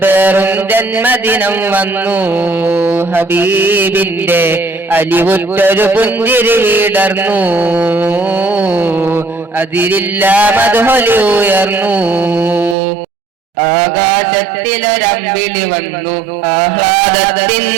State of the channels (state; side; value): drops out; left; at 12.8 s